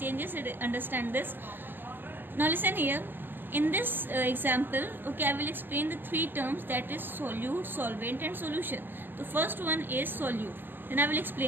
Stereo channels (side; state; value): left; late; 0.092 ms